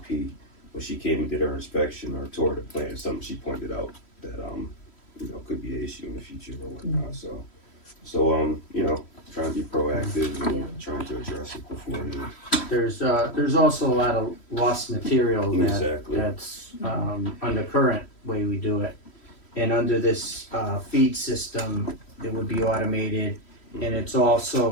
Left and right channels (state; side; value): late; right; 3.1 ms